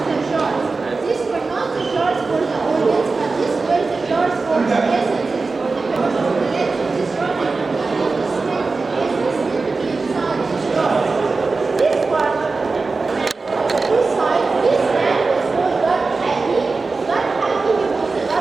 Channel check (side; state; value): left; quieter; 4.0 dB